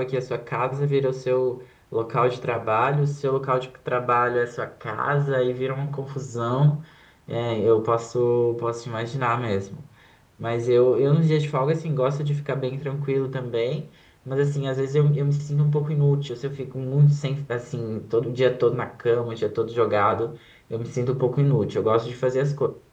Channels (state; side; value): identical; both; correlation 1.00